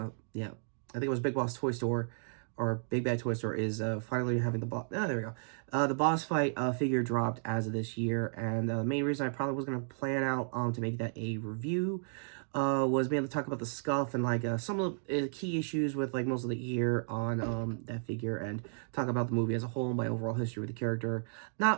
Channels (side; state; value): left; silent; digital silence